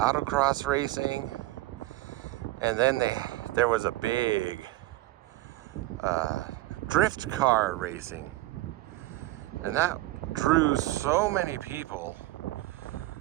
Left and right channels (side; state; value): left; quieter; 17.8 dB